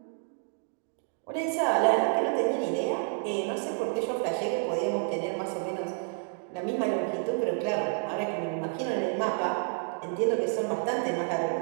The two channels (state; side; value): silent; left; 58 dB below the other